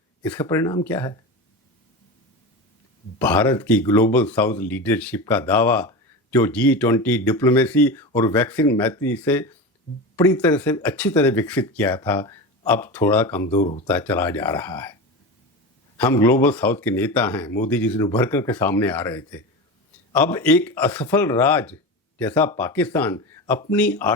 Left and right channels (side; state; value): both; normal; correlation 0.25